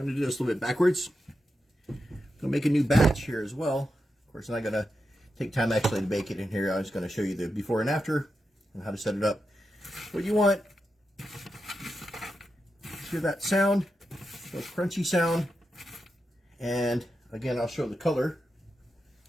to do this a little bit backwards. I'm going to make a new batch here as well. Of course, I'm not going to take time actually to bake it in here. I'm just going to show you the before and after and how to set it up. What you want, hear that sound, that crunchy sound, and again, I'll show the color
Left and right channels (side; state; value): both; normal; correlation 0.88